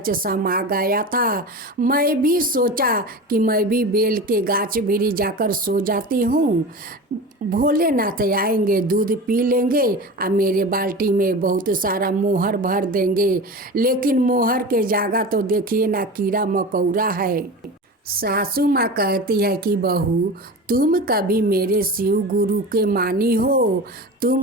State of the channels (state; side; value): normal; both; correlation 0.31